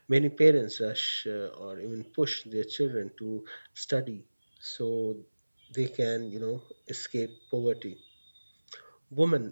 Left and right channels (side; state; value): both; inverted; correlation -1.00